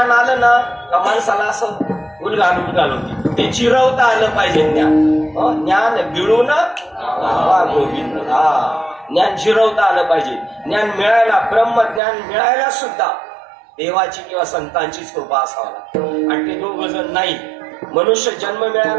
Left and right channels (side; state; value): left; drops out; at 12.0 s